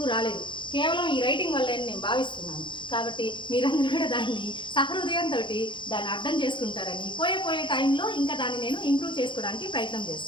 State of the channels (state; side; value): late; right; 0.23 ms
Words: రాలేదు. కేవలం ఈ రైటింగ్ వల్ల నేను భావిస్తున్నాను. కాబట్టి మీరందరూ కూడా దాన్ని సహృదయంతో దాన్ని అర్థం చేసుకుంటారని, పోయే టైంలో ఇంకా దాన్ని నేను ఇంప్రూవ్ చేసుకోవడానికి ప్రయత్నం